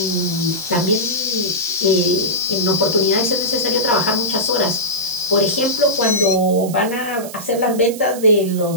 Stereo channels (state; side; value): noise; right; hiss, 14 dB below the sound